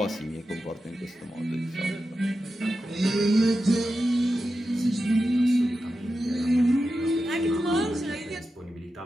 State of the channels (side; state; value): both; normal; correlation 0.91